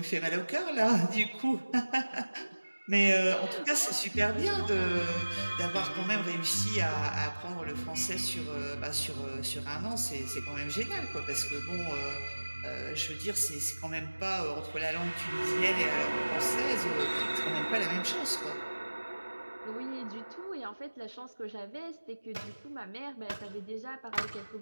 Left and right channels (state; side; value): inverted; both; correlation -1.00